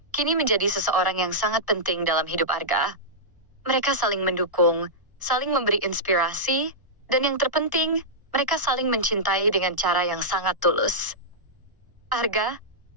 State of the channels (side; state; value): left; late; 1.0 ms